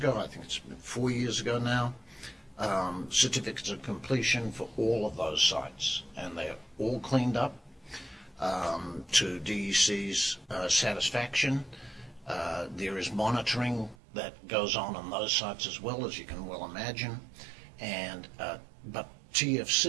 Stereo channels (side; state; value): left; drops out; at 14.0 s